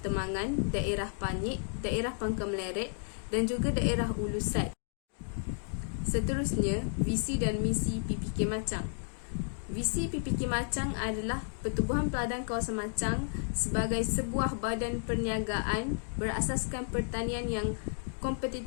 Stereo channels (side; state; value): right; silent; digital silence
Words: Temangan, daerah Panyik, daerah Pangkal Meleret dan juga daerah Ulusat. Seterusnya, visi dan misi PPK Machang. Visi PPK Machang adalah Pertubuhan Peladang Kawasan Machang sebagai sebuah badan perniagaan berasaskan pertanian yang